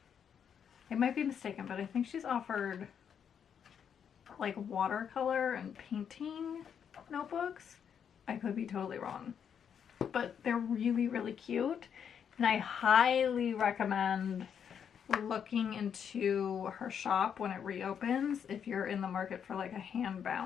I might be mistaken, but I think she's offered like watercolor and painting notebooks. I could be totally wrong. But they're really, really cute. And I highly recommend looking into her shop when it reopens if you're in the market for like a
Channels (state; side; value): quieter; right; 7.9 dB